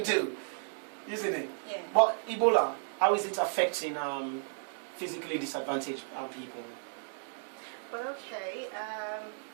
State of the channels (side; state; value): left; silent; digital silence